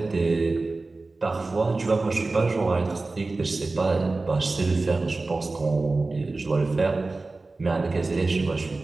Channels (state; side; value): quieter; left; 3.4 dB